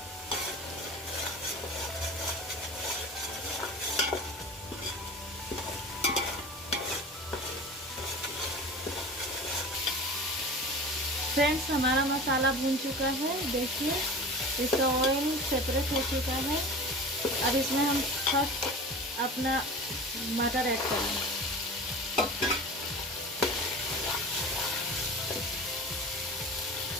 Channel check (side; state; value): both; normal; correlation 0.35